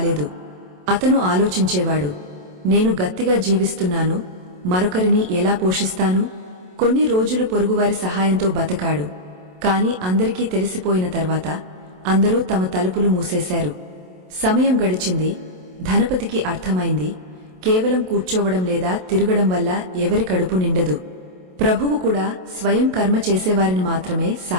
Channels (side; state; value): left; late; 27 ms